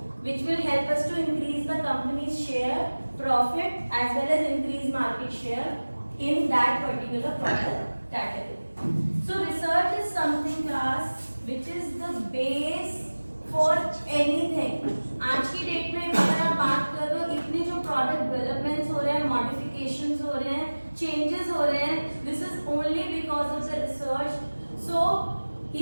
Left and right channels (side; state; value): both; inverted; correlation -1.00